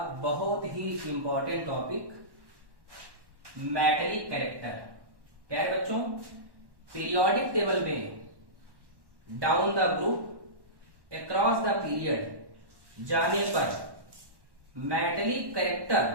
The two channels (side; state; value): left; late; 1.1 ms